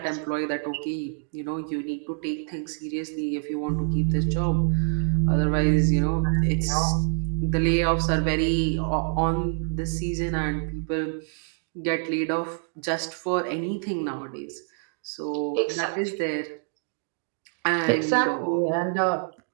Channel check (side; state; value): left; silent; 61 dB below the other